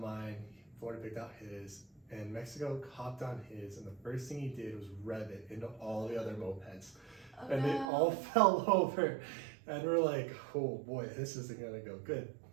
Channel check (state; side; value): drops out; left; at 7.9 s